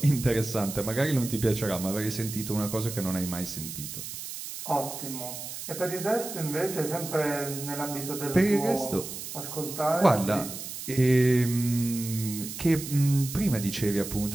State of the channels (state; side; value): noise; right; hiss, 9 dB below the sound